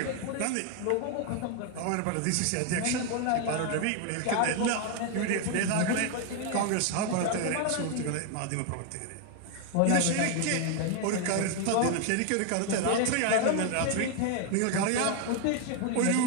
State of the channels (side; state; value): both; different; correlation 0.01